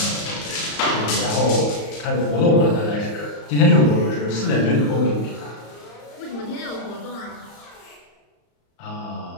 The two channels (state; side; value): late; right; 34 ms